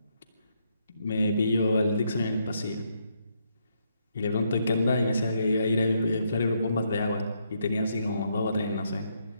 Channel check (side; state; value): both; inverted; correlation -0.76